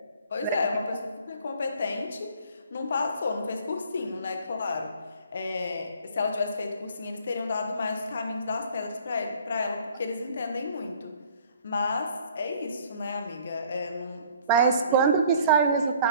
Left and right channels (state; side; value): inverted; both; correlation -0.55